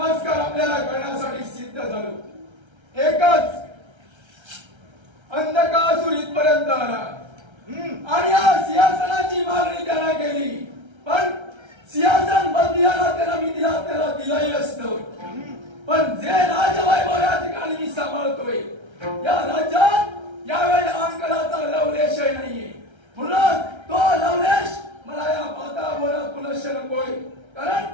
आपल्याला करण्यासाठी सिद्ध झालो. एकच अंधकासुर इथपर्यंत आला आणि या सिंहासनाची मागणी त्याला केली, पण सिंहासन बंदियाला त्याला दिलंही असतं. पण जे राजवैभव या ठिकाणी मी सांभाळतोय या राज्यात यावेळी अहंकाराचा लवलेशही नाहीये. म्हणून तो लवलेश मला या वातावरणात पुनश्च नकोय. कारण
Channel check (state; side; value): late; left; 1.3 ms